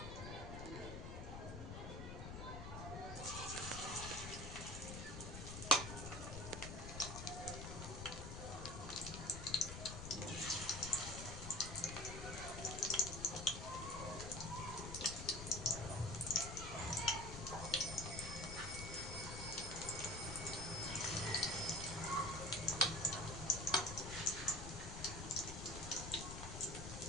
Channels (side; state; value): left; noise; rumble, 7 dB below the sound